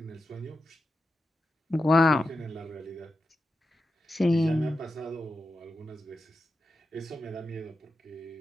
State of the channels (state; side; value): normal; both; correlation 0.89